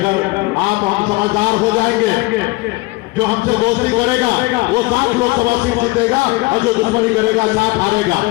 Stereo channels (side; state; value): right; quieter; 22.4 dB